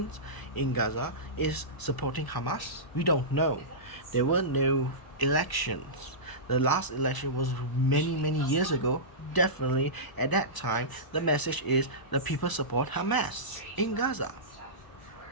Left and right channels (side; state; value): right; late; 1.0 ms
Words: in Gaza is supporting Hamas? We don't know. There were no elections. The last election was many years ago. Definitely at that time, the message is the people support Hamas in Gaza.